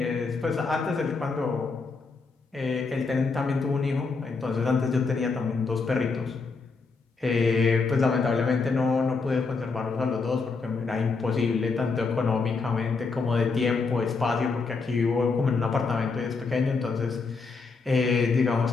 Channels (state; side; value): quieter; right; 4.4 dB